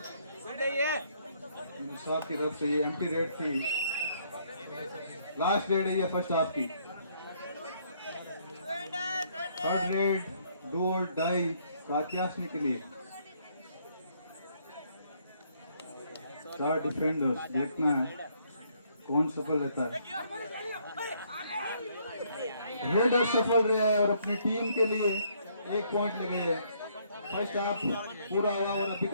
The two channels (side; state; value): both; inverted; correlation -0.68